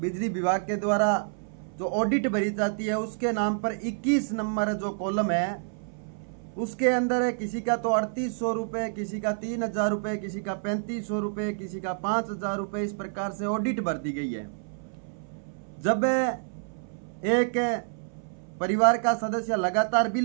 विभाग के द्वारा जो ऑडिट भरी जाती है, उसके नाम पर 21 नंबर जो कॉलम है, उसके अंदर किसी का तो 3800 रुपये, किसी का 3000 रुपये, किसी का 3500 रुपये, किसी का 5000 रुपये, इस प्रकार से ऑडिट भर दी गई है। जब एक परिवार का सदस्य लगातार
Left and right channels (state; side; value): silent; left; 59 dB below the other